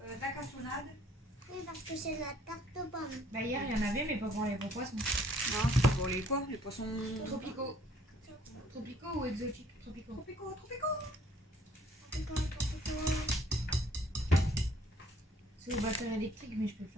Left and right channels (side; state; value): both; normal; correlation 0.60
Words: la cassonade. Oui, parce que c'est la tarte aux pommes. Bah, hier, il y en avait, mais pas pour les gros poissons. Non, c'est pour les quoi? Les poissons Tropicaux. Tropicaux ou exotiques? Tropicaux. tropicaux, tropicaux. C'est au batteur électrique, mais je peux le